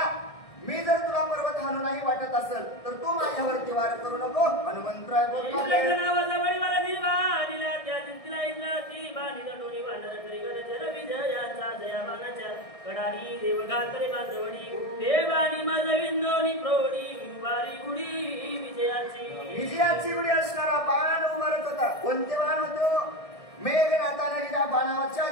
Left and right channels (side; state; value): right; late; 1.6 ms